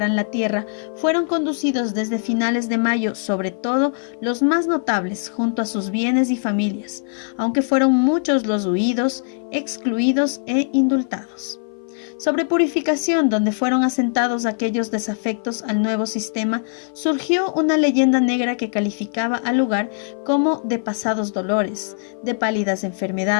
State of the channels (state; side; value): silent; right; 58 dB below the other